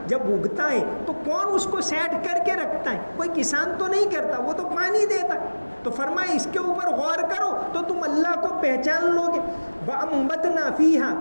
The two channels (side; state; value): both; inverted; correlation -1.00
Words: جب اگتا ہے تو کون اس کو سیٹ کر کے رکھتا ہے؟ کوئی کسان تو نہیں کرتا، وہ تو پانی دیتا ہے۔ تو فرمایا اس کے اوپر غور کرو تو تم اللہ کو پہچان لو گے۔ وَأَنبَتْنَا فِيهَا